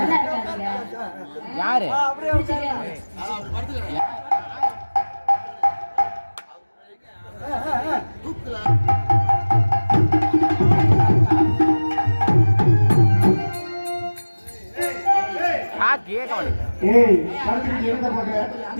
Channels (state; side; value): inverted; both; correlation -1.00